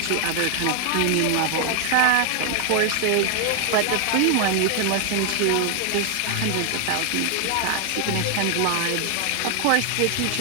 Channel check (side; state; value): both; different; correlation 0.00